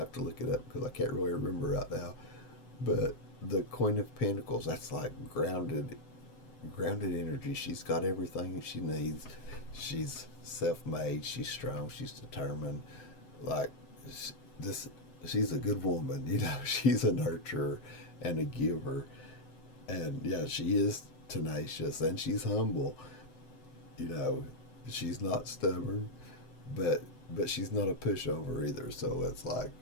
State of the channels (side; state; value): right; late; 8.0 ms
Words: to look it up because I can't really remember right now. But the Queen of Pentacles, that's like grounded energy. She's got everything she needs. She's self-made. She's strong. She's determined. Like, she's a good woman. You know, she's a nurturer and a giver. And yeah, she is tenacious and she's humble. You know, she's not stubborn, but she's not a pushover either. So it's like